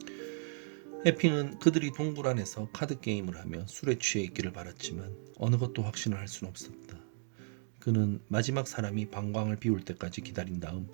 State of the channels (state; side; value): silent; left; 55 dB below the other